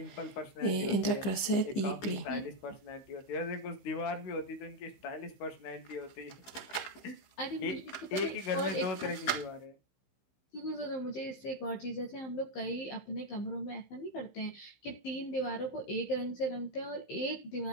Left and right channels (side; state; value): right; late; 15 ms